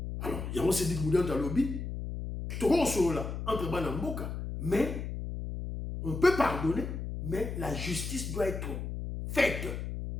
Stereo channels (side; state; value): left; noise; hum, 5 dB below the sound